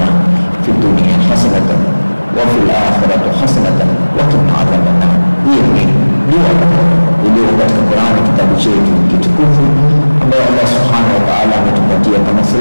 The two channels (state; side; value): inverted; both; correlation -1.00